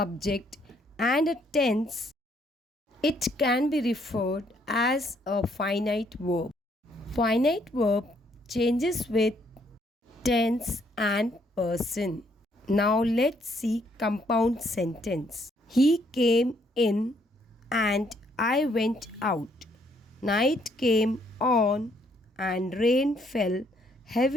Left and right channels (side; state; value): both; normal; correlation 0.69